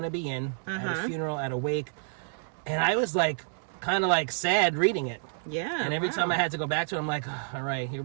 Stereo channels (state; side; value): silent; left; digital silence